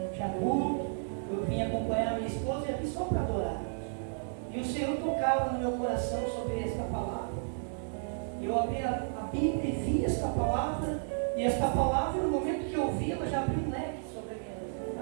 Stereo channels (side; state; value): left; silent; digital silence